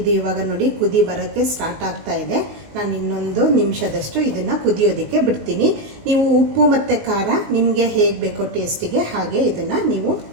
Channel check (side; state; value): left; late; 19 ms